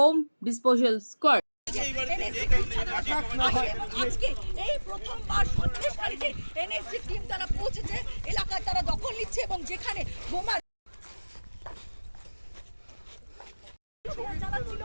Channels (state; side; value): inverted; both; correlation -1.00